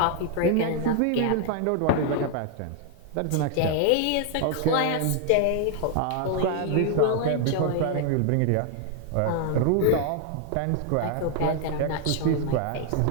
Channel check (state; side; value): different; both; correlation 0.00